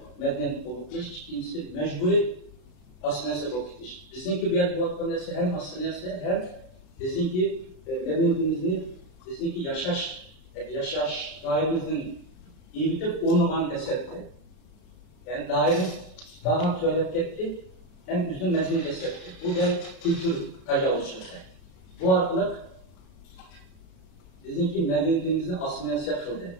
medeniyet kovukluş, ikincisi mecburi asıl neresi kovukluş. Bizimki bir yer bu vakti neresi hem asıl neresi hem bizimki medeniyetimizin, bizimki yaşaş dairemizin iyi bitip onu bana desetti. Yani daire daha tuvalet gitti, hem üzüm mezun desetti. Bu da kültür tecavüzçülüğü. Bu arkalık bizimki medeniyetimizin asimilasiya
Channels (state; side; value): late; right; 32 ms